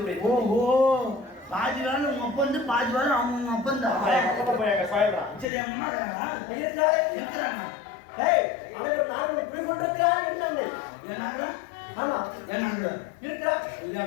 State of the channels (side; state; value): right; drops out; at 5.5 s